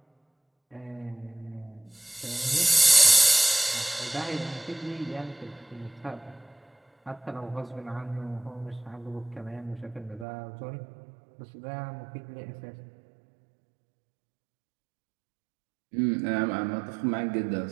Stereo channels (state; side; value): drops out; left; at 10.2 s